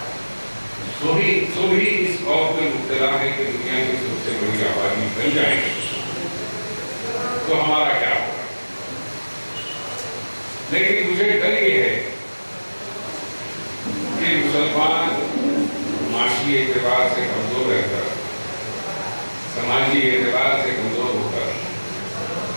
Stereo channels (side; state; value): both; inverted; correlation -1.00